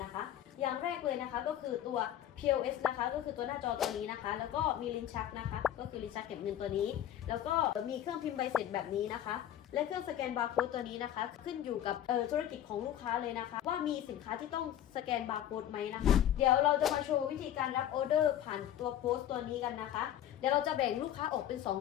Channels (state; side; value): quieter; right; 11.3 dB